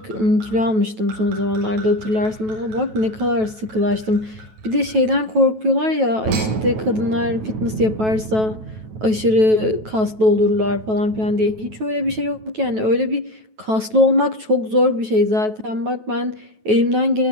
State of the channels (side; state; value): left; late; 9.2 ms